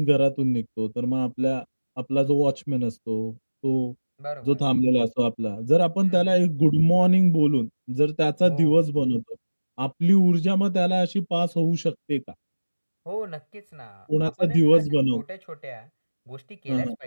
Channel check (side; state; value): both; inverted; correlation -1.00